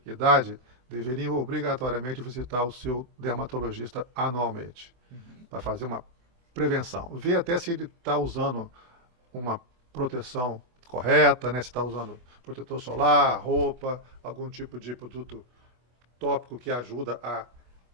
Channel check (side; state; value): left; late; 24 ms